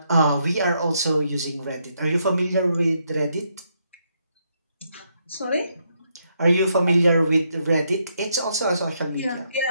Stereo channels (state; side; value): inverted; both; correlation -0.77